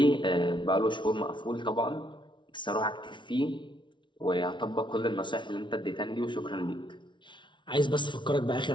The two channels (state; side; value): late; right; 0.24 ms